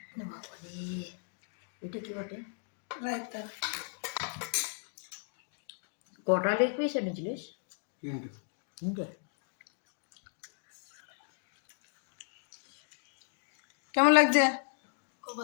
এটা কি বটে? রায়তা। কটা লেগ পিস এনেছিলিস? তিনটে। কেমন লাগছে? খুব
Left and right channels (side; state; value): right; silent; 54 dB below the other